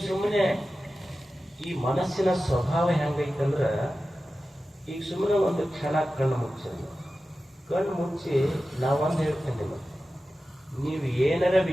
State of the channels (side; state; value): both; normal; correlation 0.94